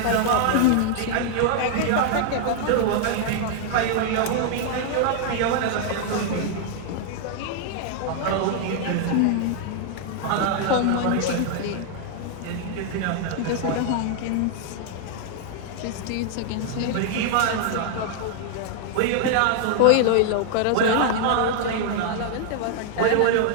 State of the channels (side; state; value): both; different; correlation -0.01